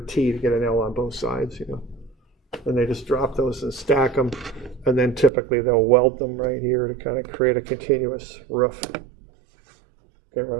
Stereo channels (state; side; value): drops out; left; at 5.3 s